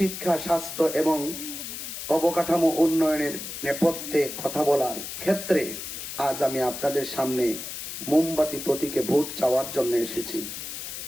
স্বাস্থ্য এবং অবকাঠামো উন্নয়নের নেপথ্যে কথা বলার ক্ষেত্রে আজ আমি আপনাদের সামনে মোমবাতি প্রতীকে ভোট চাওয়ার জন্য এসেছি।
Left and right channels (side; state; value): left; noise; hiss, 8 dB below the sound